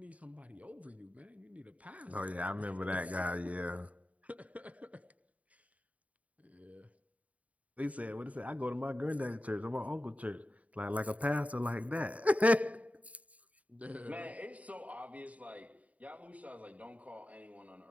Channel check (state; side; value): late; left; 0.069 ms